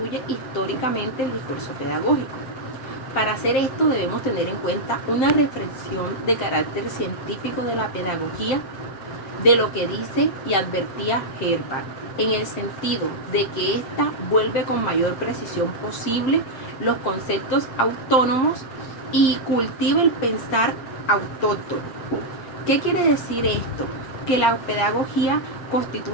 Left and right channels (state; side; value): late; right; 7.6 ms